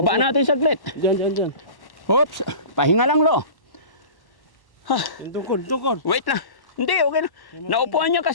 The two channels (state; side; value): late; right; 1.1 ms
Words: natin saglit. Diyan. Oops. Pahinga lang, Lo. Tungkod. Wait lang. Hindi, okay lang. Naupuan niya